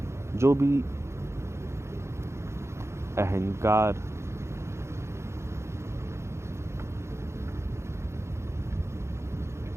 जो भी अहंकार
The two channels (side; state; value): left; late; 0.13 ms